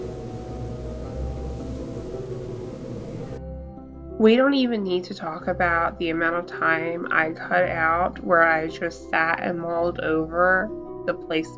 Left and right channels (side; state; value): both; identical; correlation 1.00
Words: We don't even need to talk about the amount of time I cut out where I just sat and mulled over the